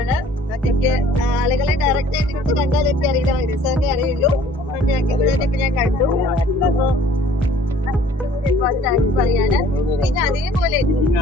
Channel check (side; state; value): both; normal; correlation 0.54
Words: അതൊക്കെ ആളുകളെ ഡയറക്റ്റ് ആയിട്ട് നമുക്ക് കണ്ടാലൊക്കെ അറിയില്ല, ഹക്കീം സാറിനെ അറിയുള്ളൂ. ഹക്കീം സാറിനൊക്കെ ഞാൻ കണ്ടു. താങ്ക്സ് പറയാണ്. പിന്നെ അതേപോലെ